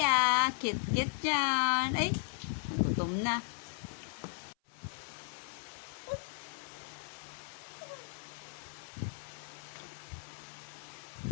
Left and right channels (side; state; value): right; silent; 53 dB below the other